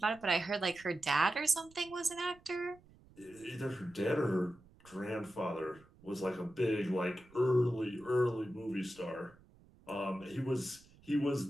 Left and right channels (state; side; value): noise; right; rumble, 26 dB below the sound